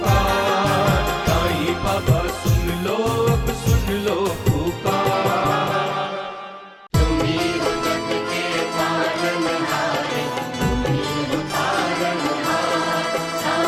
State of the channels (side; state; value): both; identical; correlation 1.00